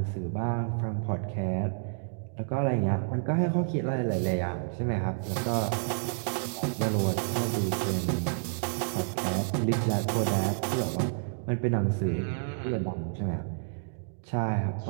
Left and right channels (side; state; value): left; silent; digital silence